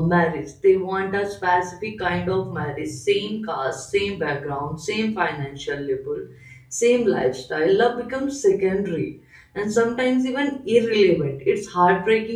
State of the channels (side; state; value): both; identical; correlation 1.00